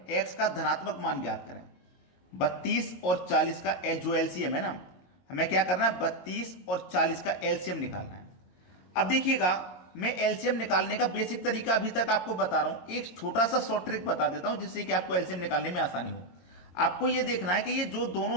एक्स का धनात्मक मान ज्ञात करें। 32 और 40 का जो एलसीएम है ना, हमें क्या करना है? 32 और 40 का एलसीएम निकालना है। अब देखिएगा मैं एलसीएम निकालने का बेसिक तरीका अभी तक आपको बता रहा हूं, एक छोटा सा शॉर्ट ट्रिक बता देता हूं जिससे कि आपको एलसीएम निकालने में आसानी हो। आपको यह देखना है कि ये जो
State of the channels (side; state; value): right; late; 22 ms